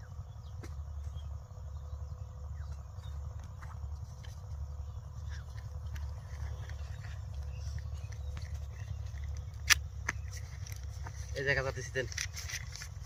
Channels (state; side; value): identical; both; correlation 1.00